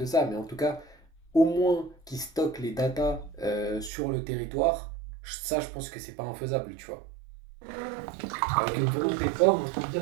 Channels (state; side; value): drops out; left; at 3.9 s